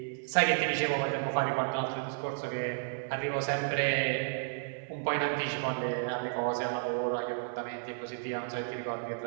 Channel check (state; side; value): silent; left; 56 dB below the other